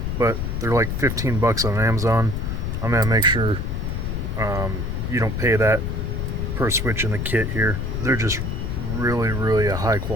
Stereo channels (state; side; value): noise; left; rumble, 2 dB below the sound